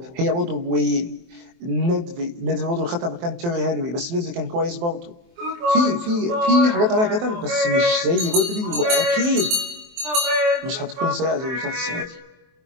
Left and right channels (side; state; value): left; late; 23 ms